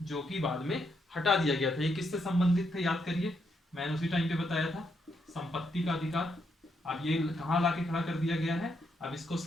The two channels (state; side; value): normal; both; correlation 0.78